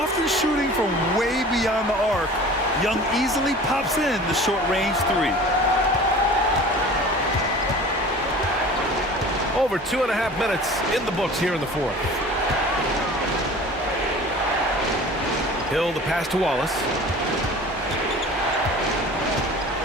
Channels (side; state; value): both; normal; correlation 0.42